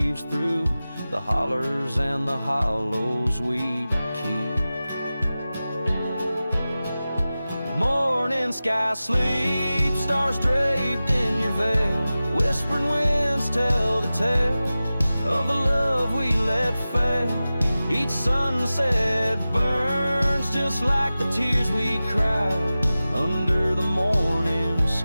through the hollers and the hollows we keep. Morning sky sleeps stars draped in your veil. Whispering winds tell the tale of the love we let fail. Each sunset burns just like the tears we cried under the morning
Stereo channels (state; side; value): inverted; both; correlation -0.96